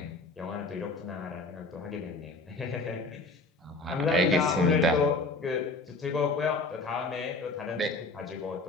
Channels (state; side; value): quieter; right; 3.2 dB